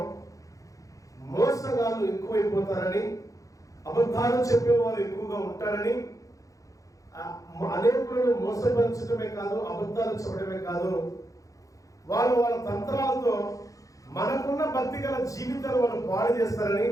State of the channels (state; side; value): late; right; 0.16 ms